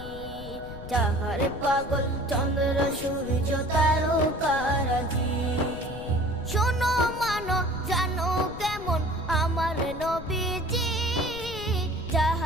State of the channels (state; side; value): noise; left; rumble, 12 dB below the sound